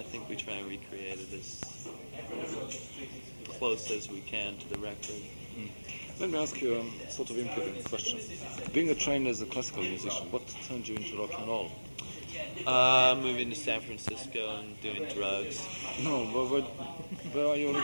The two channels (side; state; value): both; inverted; correlation -1.00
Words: think we try and recreate it as close as we can to the record. Let me ask you a sort of important question. Being trained as a classical musician, what turned you into rock and roll? Moving to San Francisco and doing drugs. No, but where are you